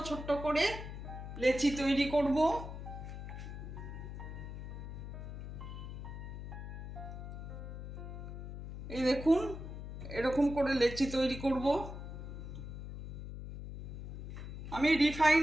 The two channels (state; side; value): noise; left; hum, 8 dB below the sound